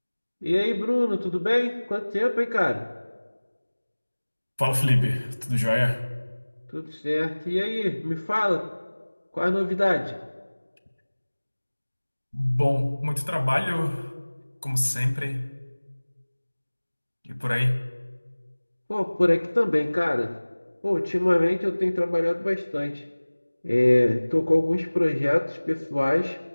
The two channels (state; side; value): inverted; both; correlation -1.00